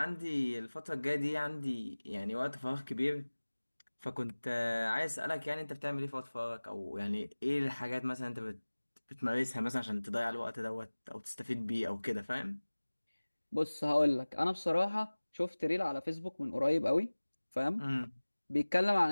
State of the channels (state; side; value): inverted; both; correlation -1.00